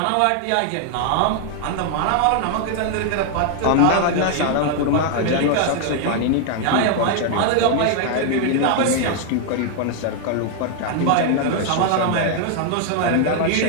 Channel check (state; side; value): different; both; correlation 0.00